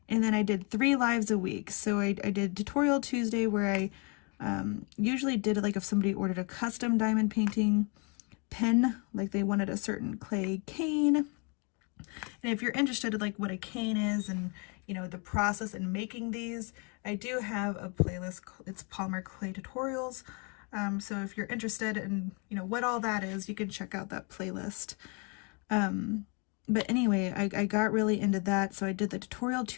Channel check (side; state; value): right; quieter; 34.3 dB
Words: and then I did 3 lives a week. So I did Tutorial Tuesday, where I usually did it like if somebody ordered a custom diamond painting pen, like they wanted a certain clay cane. And if you're interested in like what a cane is and, you know, the process in making these, I do have a playlist. It's polymer clay tutorials. So if you're interested in, you know, what all that is, you can check out that playlist. But anyway, I got really into that. So I did the Tutorial